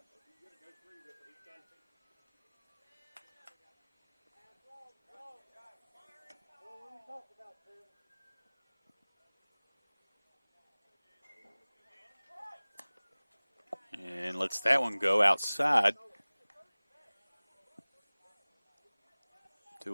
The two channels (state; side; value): inverted; both; correlation -1.00